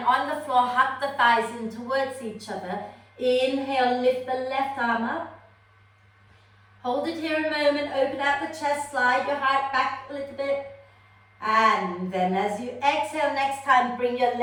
on the floor, hug the thighs in towards each other. Inhale, lift the left arm up. Hold it here a moment, open out the chest, slide your heart back a little bit. And then as you exhale next time, bring your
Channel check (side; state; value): both; identical; correlation 1.00